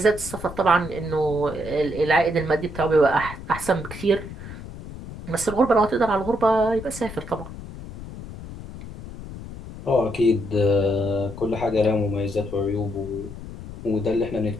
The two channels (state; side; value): noise; left; rumble, 12 dB below the sound